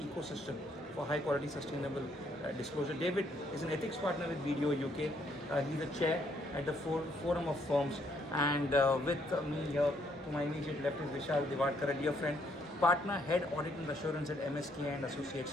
for high quality sustainable disclosure. David is an ethics partner with BDO UK. He's the chair at the Forum of Firms, and with me here to my immediate left is Vishal Divadkar, a dear friend, partner, head audit and assurance at MSK and Associates,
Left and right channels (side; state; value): both; normal; correlation 0.70